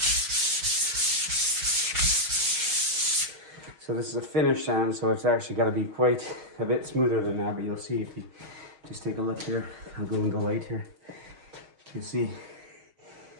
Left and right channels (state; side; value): late; left; 6.3 ms